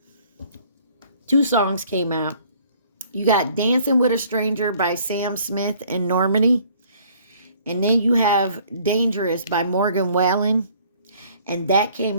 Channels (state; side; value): inverted; both; correlation -0.58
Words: 2 songs came out. You got Dancing with a Stranger by Sam Smith and Normani. And then you have Dangerous by Morgan Wallen. And that